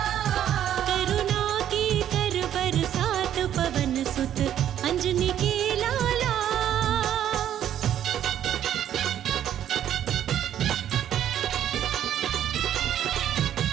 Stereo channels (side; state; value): left; quieter; 10.7 dB